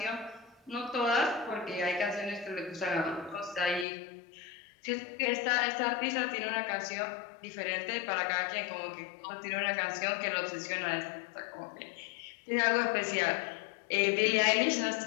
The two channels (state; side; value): drops out; right; at 3.9 s